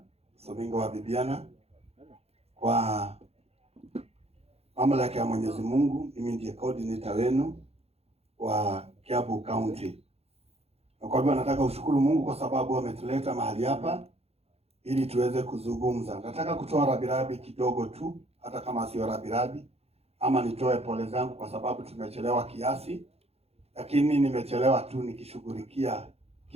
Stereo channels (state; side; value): late; left; 0.29 ms